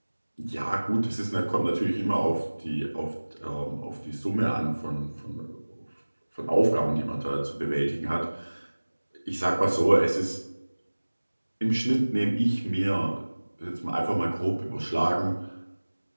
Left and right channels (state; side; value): inverted; both; correlation -1.00